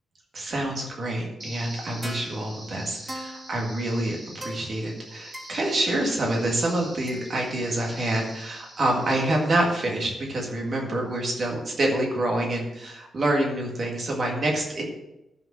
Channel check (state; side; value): normal; both; correlation 0.83